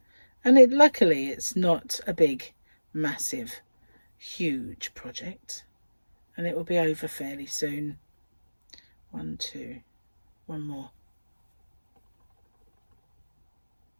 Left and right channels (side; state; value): both; inverted; correlation -1.00